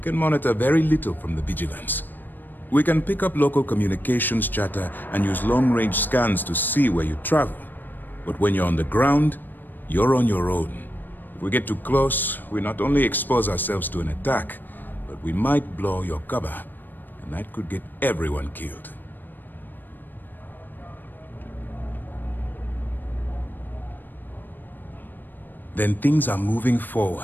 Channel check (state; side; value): late; right; 0.091 ms